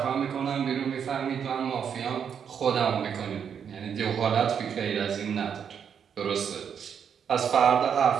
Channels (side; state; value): left; quieter; 7.6 dB